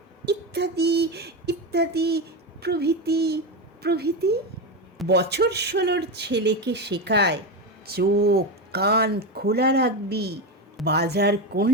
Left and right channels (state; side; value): normal; both; correlation 0.15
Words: ইত্যাদি ইত্যাদি, প্রভৃতি প্রভৃতি। বছর 16 ছেলেকে শেখায়, চোখ কান খোলা রাখবি, বাজার